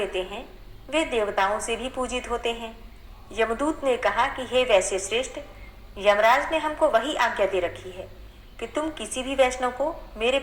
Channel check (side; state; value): both; identical; correlation 1.00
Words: हैं वे देवताओं से भी पूजित होते हैं। यमदूत ने कहा कि हे वैश्य श्रेष्ठ, यमराज ने हमको वही आज्ञा दे रखी है कि तुम किसी भी वैष्णव को मेरे